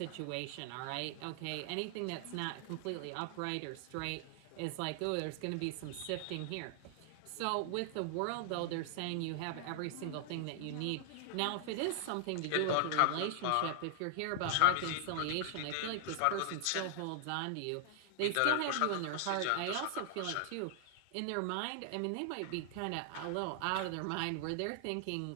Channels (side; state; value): both; different; correlation 0.00